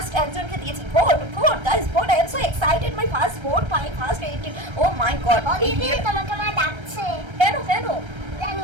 একজনকে দিয়েছি। Vote guys, vote. I am so excited, my first vote, my first edit. Oh my god, এই দিদি তোমাকে মা ডাকছে। কেন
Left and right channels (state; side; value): late; left; 1.3 ms